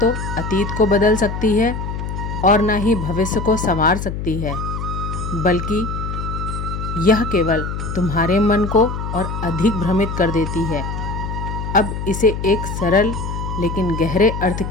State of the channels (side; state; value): left; noise; hum, 5 dB below the sound